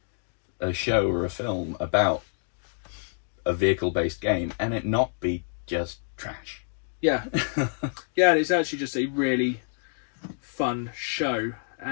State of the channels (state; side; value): silent; right; digital silence